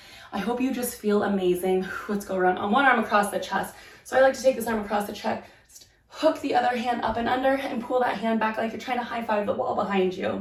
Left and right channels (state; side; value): identical; both; correlation 1.00